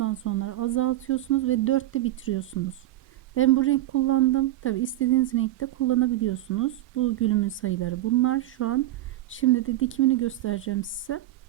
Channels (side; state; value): left; quieter; 15.0 dB